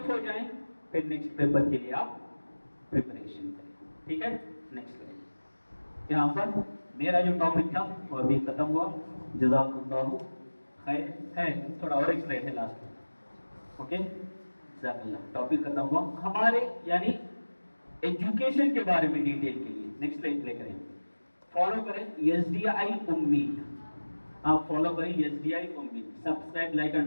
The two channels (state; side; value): inverted; both; correlation -1.00